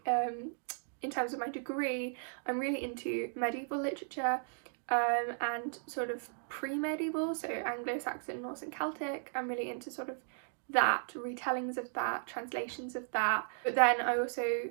in terms of my degree, I'm really into medieval literature, and sort of pre-medieval, so Anglo-Saxon, Norse and Celtic. I'm really into sort of that, retellings of that, translations of that. But then I also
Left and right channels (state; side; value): silent; left; digital silence